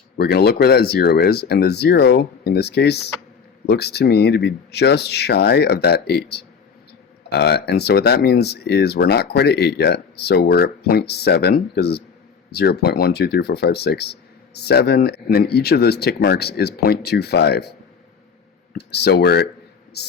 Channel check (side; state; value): right; quieter; 6.2 dB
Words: we're going to look where that 0 is. And the 0, in this case, looks to me to be just shy of that 8. And so what that means is we're not quite at 8 yet. So we're at 0.7, because it's 0, 0.1, 2, 3, 4, 5, 6, 7. And then each of those tick marks is 0.25. So we're